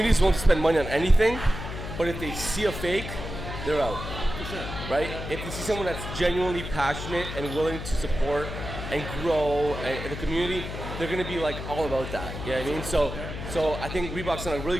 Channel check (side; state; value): left; noise; hum, 7 dB below the sound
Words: won't spend money on anything, but if they see a fake, they're out. For sure. Right? If you see someone that's genuinely passionate and willing to support and grow in the community, they're going to be like all about that. You know what I mean? So I think Reebok's done a really